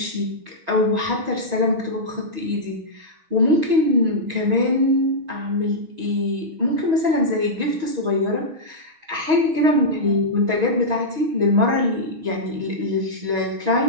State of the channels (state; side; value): late; left; 6.3 ms